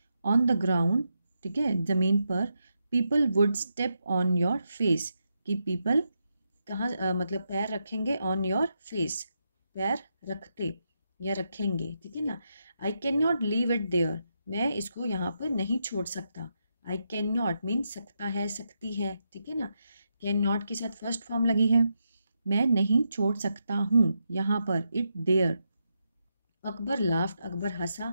ऑन द ग्राउंड, ठीक है, ज़मीन पर, people would step on your face, कि पीपल कहाँ मतलब पैर रखेंगे, ऑन योर फेस, पैर रखते या रखेंगे, ठीक है ना। I can not leave it there, मैं इसको यहाँ पर नहीं छोड़ सकता। आई कैन नॉट मीन सकता है, सकती है, ठीक है ना। कैन नॉट के साथ फर्स्ट फॉर्म लगी है, मैं नहीं छोड़ सकता हूँ यहाँ पर, it there. Akbar laughed, Akbar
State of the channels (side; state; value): both; inverted; correlation -0.84